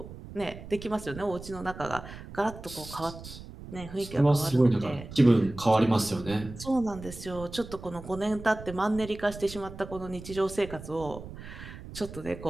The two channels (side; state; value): right; noise; rumble, 13 dB below the sound